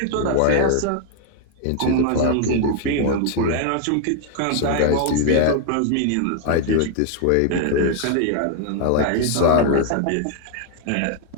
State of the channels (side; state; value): both; different; correlation 0.00